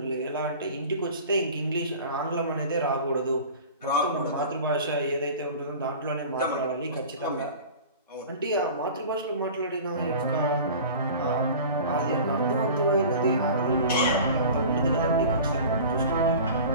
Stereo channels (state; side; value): inverted; both; correlation -0.39